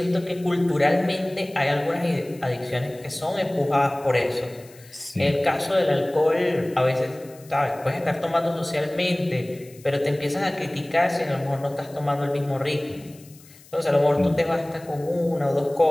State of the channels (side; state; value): left; noise; hiss, 24 dB below the sound